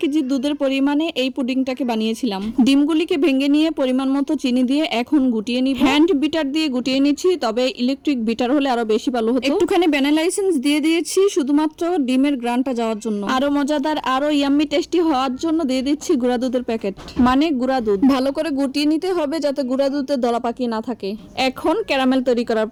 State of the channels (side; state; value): both; identical; correlation 1.00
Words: দুধের পরিমাণে এই পুডিংটাকে বানিয়েছিলাম। ডিমগুলিকে ভেঙে নিয়ে পরিমাণ মতো চিনি দিয়ে এখন গুটিয়ে নিব। হ্যান্ড বিটার দিয়ে গুটিয়ে নিচ্ছি, তবে ইলেকট্রিক বিটার হলে আরো বেশি ভালো হতো। একটুখানি ভ্যানিলা এসেন্স দিয়ে দিয়েছি শুধুমাত্র ডিমের গ্রানটা যাওয়ার জন্য। আরো মজাদার, আরো ইয়াম্মি টেস্টি হওয়ার জন্য দিয়ে দিচ্ছি গুঁড়া দুধের প্যাকেট, মানে গুঁড়া দুধ। ভালো করে গুটিয়ে নিতে হবে যাতে গুঁড়া দুধে দলা পাকি না থাকে। এখন ক্যারামেল তৈরি করার